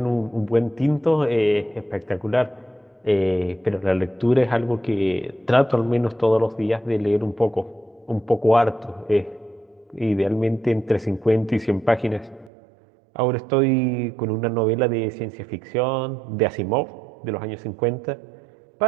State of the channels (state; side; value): drops out; left; at 12.5 s